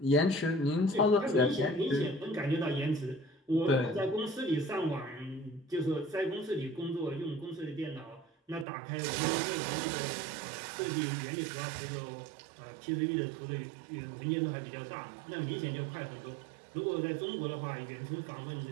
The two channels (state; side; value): drops out; left; at 8.7 s